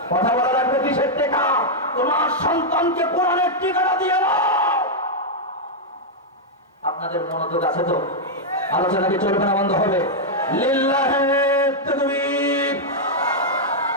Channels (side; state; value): both; normal; correlation -0.03